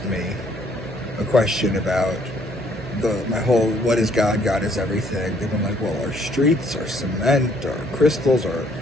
me a question about my whole "what is God? God is everything." They've been like, "Well, are streets, or cement, or crystals, or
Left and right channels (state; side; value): noise; right; hum, 14 dB below the sound